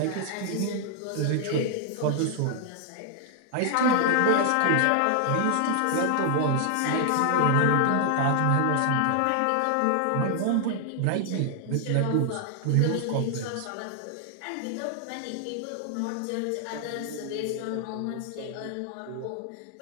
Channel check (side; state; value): both; different; correlation 0.00